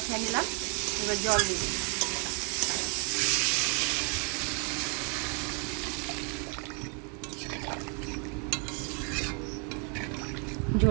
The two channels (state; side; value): quieter; left; 32.1 dB